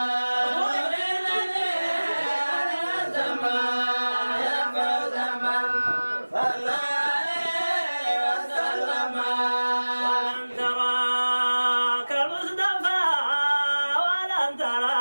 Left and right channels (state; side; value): inverted; both; correlation -1.00